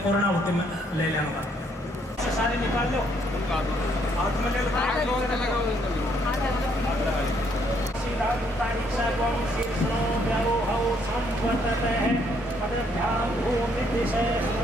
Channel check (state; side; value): normal; both; correlation 0.69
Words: पूर्णाहुति में ले लेंगे। सारे निकाल लो।